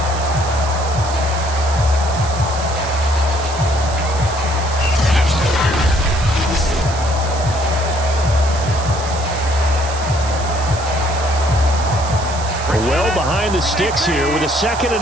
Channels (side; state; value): right; noise; hiss, 12 dB below the sound